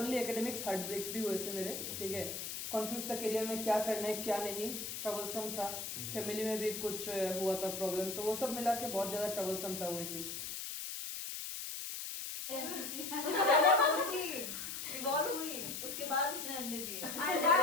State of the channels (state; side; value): noise; left; hiss, 5 dB below the sound